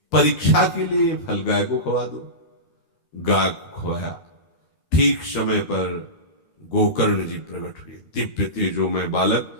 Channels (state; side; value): late; right; 13 ms